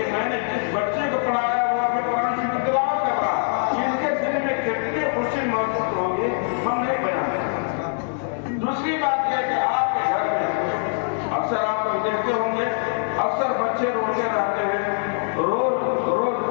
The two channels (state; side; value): silent; right; digital silence